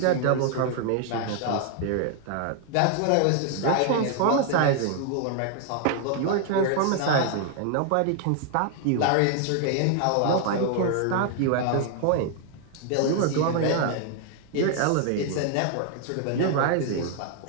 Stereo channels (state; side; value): different; both; correlation 0.00